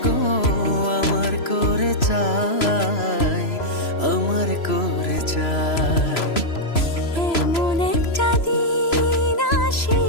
গো আমার করে চাই, আমার করে চাই।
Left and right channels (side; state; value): right; late; 3.0 ms